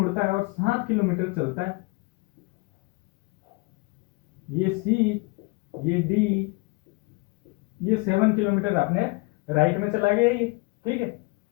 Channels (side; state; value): right; quieter; 27.5 dB